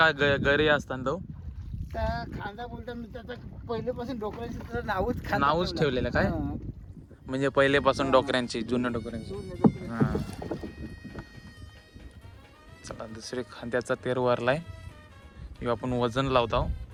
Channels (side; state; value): both; identical; correlation 1.00